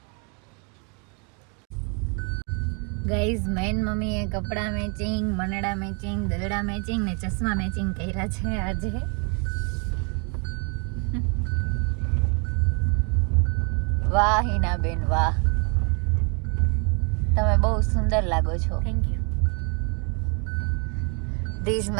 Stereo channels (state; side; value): quieter; left; 36.2 dB